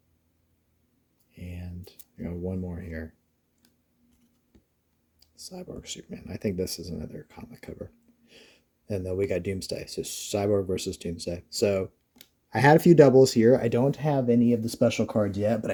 And we got 1 more here. Cyborg Superman. I think this is another comic cover. And then we got Doomsday. So Cyborg versus Doomsday. So I had a few doubles here. I don't have any of the special cards yet, but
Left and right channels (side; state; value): both; identical; correlation 1.00